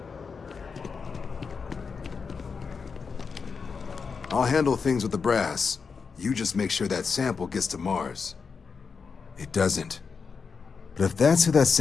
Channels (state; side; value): quieter; right; 5.4 dB